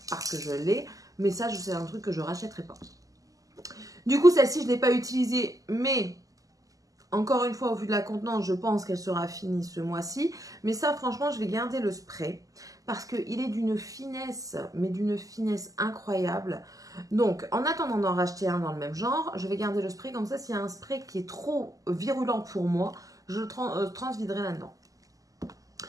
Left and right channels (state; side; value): late; left; 0.17 ms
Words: parce que je l'ai. Mais ça, c'est un truc que je ne rachèterai pas. Du coup, celle-ci, je ne l'ai pas utilisée. Mais encore une fois, au vu de la contenance, je pense qu'elle sera finie ce mois-ci. Mais ça, franchement, je vais garder le spray. Parce qu'il est d'une finesse, mais d'une finesse incroyable. Donc, en attendant d'en racheter un dans le même genre, je vais garder le spray. Comme ça, s'il y a un spray qui est trop virulent pour moi, je le transviderai là-dedans.